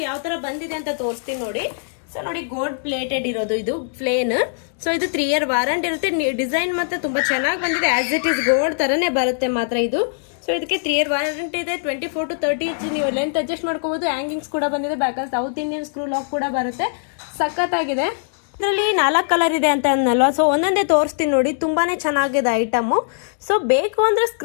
ಯಾವ ತರ ಬಂದಿದೆ ಅಂತ ತೋರಿಸ್ತೀನಿ ನೋಡಿ. ಸೊ ನೋಡಿ, ಗೋಲ್ಡ್ ಪ್ಲೇಟೆಡ್ ಇರೋದು ಇದು ಪ್ಲೇನ್. ಸೊ ಇದು 3 ಇಯರ್ ವಾರಂಟಿ ಇರುತ್ತೆ. ಡಿಸೈನ್ ಮತ್ತೆ ತುಂಬಾ ಚೆನ್ನಾಗಿ ಬಂದಿದೆ. ಆಸ್ ಇಟ್ ಈಸ್ ಗೋಲ್ಡ್ ತರನೇ ಬರುತ್ತೆ ಮಾತ್ರ ಇದು. ಸೊ ಇದಕ್ಕೆ 3 ಇಯರ್ ವಾರಂಟಿ ಇದೆ. 24 to 30 ಇಂಚ್ ನೀವು ಲೆಂತ್ ಅಡ್ಜಸ್ಟ್ ಮಾಡ್ಕೋಬಹುದು. ಹ್ಯಾಂಗಿಂಗ್ಸ್ ಕೂಡ ಬಂದಿದೆ. ಬ್ಯಾಕಲ್ಲಿ ಸೌತ್ ಇಂಡಿಯನ್ ಸ್ಕ್ರೂ ಲಾಕ್ ಕೂಡ ಬರುತ್ತೆ. ಸಖತ್ತಾಗಿದೆ. ಇದರಲ್ಲಿ 4 ಕಲರ್ ಇದೆ ಅಂತ ಅನ್ನಲ್ವಾ. ಸೊ ಒಂದೊಂದೇ ತೋರಿಸ್ತೀನಿ ನೋಡಿ. ತುಂಬಾನೇ ಚೆನ್ನಾಗಿದೆ ಐಟಮು. ಸೊ ಬೇಕು ಅಂದ್ರೆ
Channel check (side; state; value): right; silent; digital silence